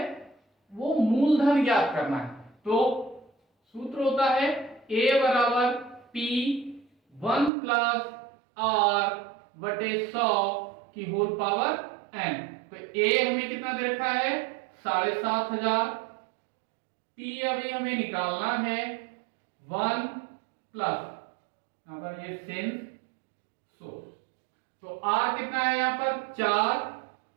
वो मूलधन ज्ञात करना है। तो सूत्र होता है A बराबर P 1 प्लस R/100 की होल पावर n। तो A हमें कितना दे रखा है, 7,500। P अभी हमें निकालना है 1 प्लस, यहां पर ये सेंस सो, तो R कितना है यहाँ पर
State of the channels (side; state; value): left; drops out; at 7.5 s